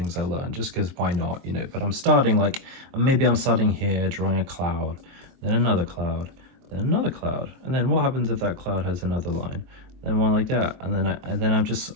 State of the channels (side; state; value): left; late; 23 ms